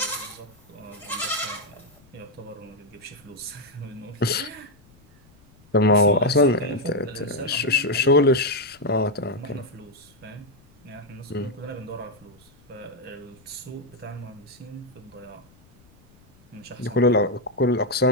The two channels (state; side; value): noise; left; rumble, 29 dB below the sound